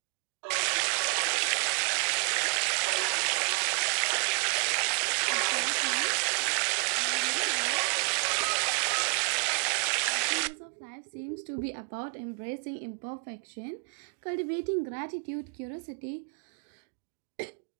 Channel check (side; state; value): left; quieter; 36.7 dB